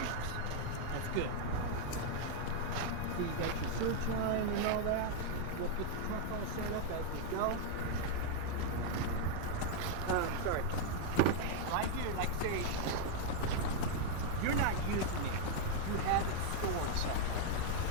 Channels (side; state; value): both; different; correlation 0.00